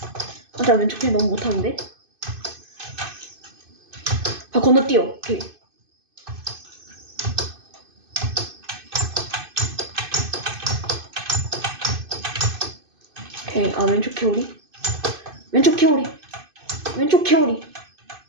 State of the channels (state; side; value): late; left; 2.5 ms